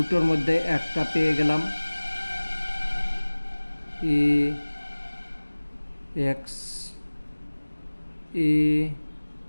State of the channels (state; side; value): inverted; both; correlation -1.00